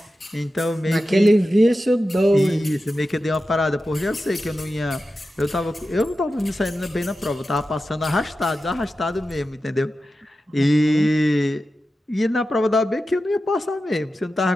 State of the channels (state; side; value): normal; both; correlation 0.92